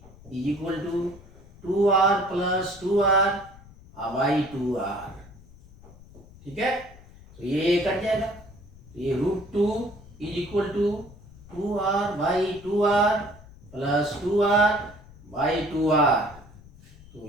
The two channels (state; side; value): noise; left; rumble, 21 dB below the sound